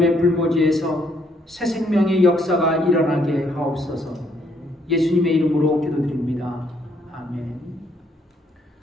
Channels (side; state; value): both; normal; correlation 0.70